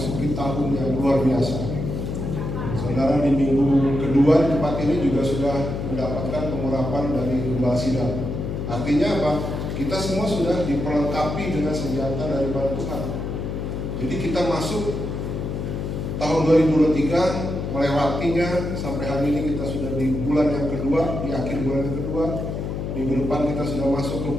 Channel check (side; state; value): left; noise; hum, 4 dB below the sound